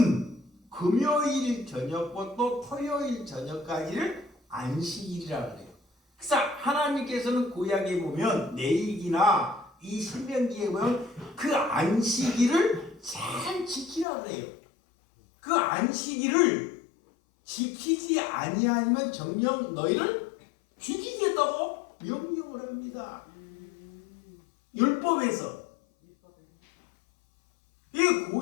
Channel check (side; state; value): right; drops out; at 14.1 s